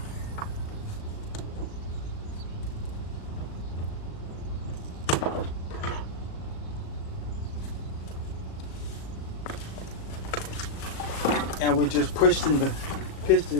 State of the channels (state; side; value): late; right; 37 ms